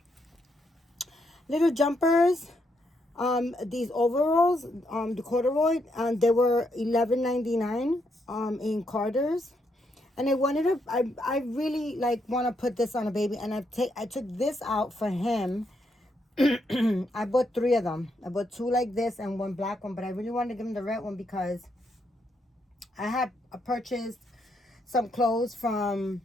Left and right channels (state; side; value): normal; both; correlation 0.78